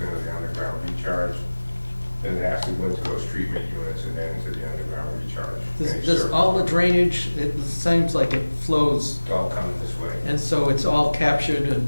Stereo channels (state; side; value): inverted; both; correlation -1.00